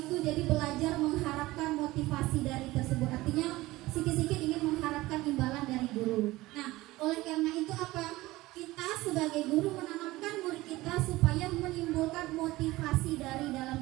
jadi belajar mengharapkan motivasi dari tersebut. Artinya sedikit-sedikit ingin mengharapkan imbalan dari guru. Nah, oleh karena itu apa? Kita sebagai guru menanamkan murid kita supaya menimbulkan motivasi dari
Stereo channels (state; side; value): quieter; left; 18.9 dB